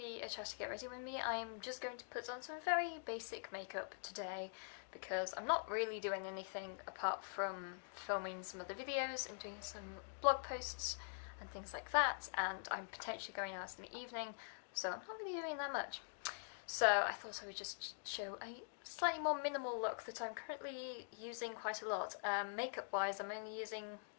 a chat to get ready with me. I am just going to put on some very basic makeup today because I'm not really doing anything apart from filming some other videos and doing some blog posts and things like that, and I'm potentially going out in the evening, so I'm not really doing that much. So I thought I would just show a slightly more minimal look that I'm currently using quite a lot. Makeup wise, I'm only using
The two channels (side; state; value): right; silent; digital silence